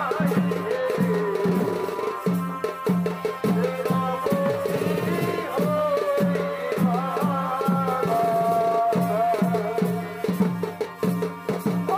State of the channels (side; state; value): both; identical; correlation 1.00